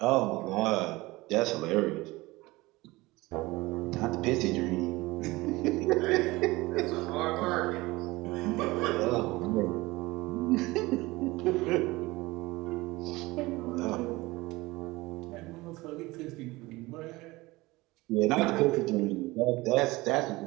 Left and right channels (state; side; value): quieter; left; 21.0 dB